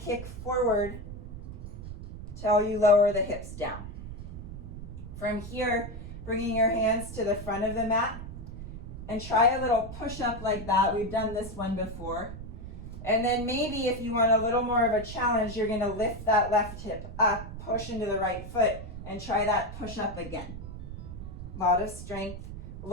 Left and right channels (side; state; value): right; noise; rumble, 10 dB below the sound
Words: forward till you lower the hips down. From here, bringing your hands to the front of the mat and try a little push-up like that. We've done this one before. And then maybe if you want a little more of a challenge, you're gonna lift that left hip up, push into the right foot, and try that push-up again. A lot of strength.